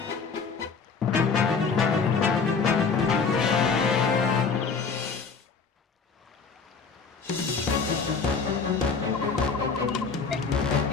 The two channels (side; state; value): right; quieter; 5.2 dB